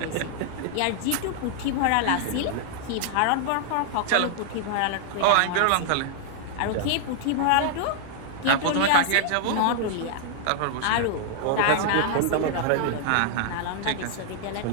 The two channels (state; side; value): different; both; correlation -0.01